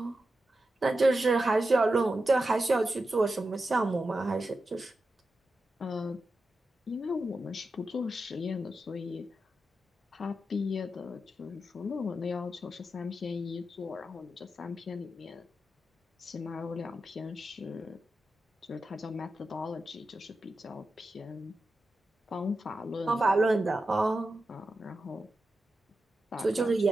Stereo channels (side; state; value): both; normal; correlation 0.90